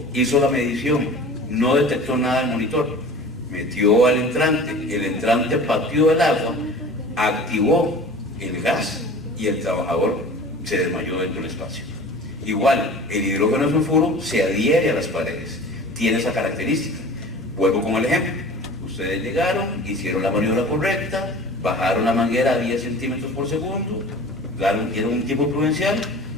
hizo la medición, no detectó nada en el monitor, metió al entrante, el entrante pateó el agua, activó el gas y el trabajador se desmayó dentro del espacio. Igual, el hidrógeno de sulfuro se adhiere a las paredes, tiene esa característica. Vuelvo con el ejemplo. Ustedes llegaron, hicieron la maniobra correcta, bajaron la manguera a 10 centímetros por segundo, dieron un tiempo prudencial,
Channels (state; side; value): normal; both; correlation 0.41